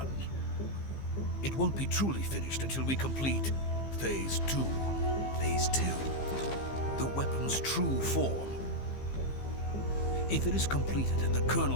It won't be truly finished until we complete Phase 2. Phase 2? The weapon's true form. If it is completed and the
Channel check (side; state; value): right; late; 15 ms